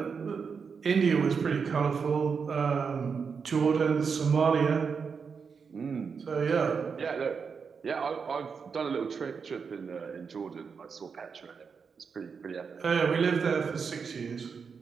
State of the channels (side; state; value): left; quieter; 5.8 dB